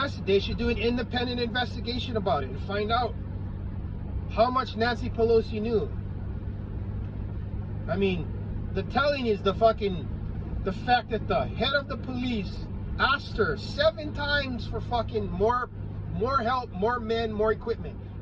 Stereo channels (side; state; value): both; identical; correlation 1.00